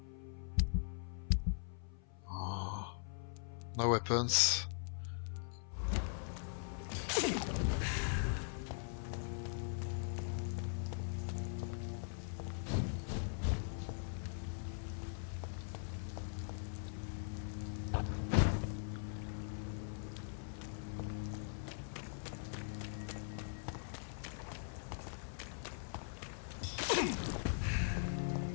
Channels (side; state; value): right; silent; 50 dB below the other